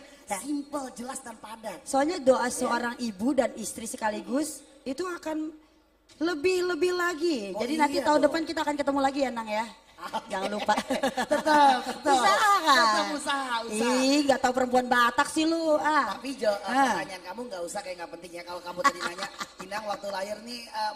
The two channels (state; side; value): identical; both; correlation 1.00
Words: Simple, jelas dan padat. Soalnya doa seorang ibu dan istri sekaligus itu akan lebih lagi. Jadi nanti tahun depan kita akan ketemu lagi ya Nang ya. Jangan lupa. Tetap. Usaha kan? Tetap usaha. Ih, gak tahu perempuan Batak sih lu. Tapi pertanyaan kamu gak usah kayak gak penting ya. Kalau kamu tadi nanya, Inang waktu lahir nih